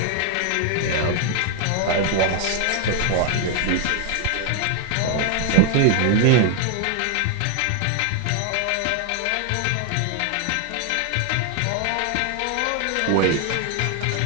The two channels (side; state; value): both; different; correlation 0.00